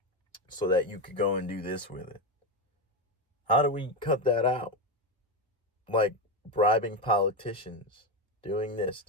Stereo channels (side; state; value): both; normal; correlation 0.12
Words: so that you could go and do this with it. How do we cut that out? Like bribing politicians doing this,